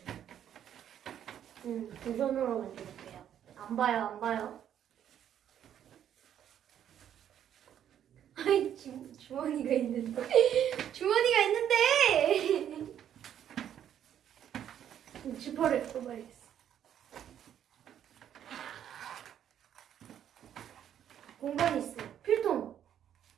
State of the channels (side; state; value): left; quieter; 9.9 dB